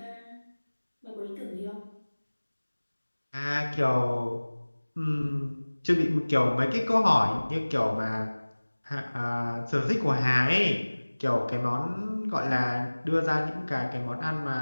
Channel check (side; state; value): both; inverted; correlation -1.00